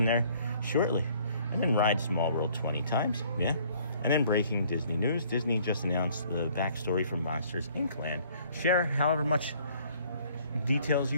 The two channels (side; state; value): both; inverted; correlation -0.59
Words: there shortly. And then ride Small World 20 times, yeah. And then breaking Disney news. Disney just announced the backstory from Monsters Inc. Land. Share however much details